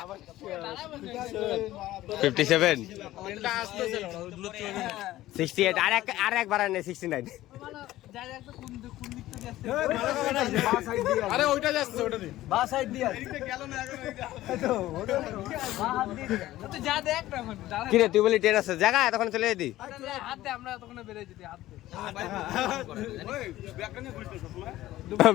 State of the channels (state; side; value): quieter; right; 15.5 dB